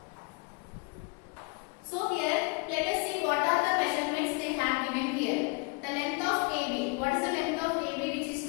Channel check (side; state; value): right; quieter; 30.5 dB